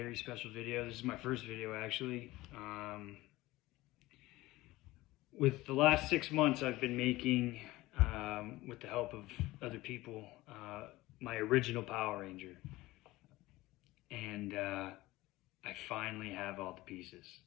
special video. This is my first video actually. With the last 6 months I've been making, with the help of other people, my original Power Ranger. And I finally have all the pieces.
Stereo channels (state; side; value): quieter; right; 18.7 dB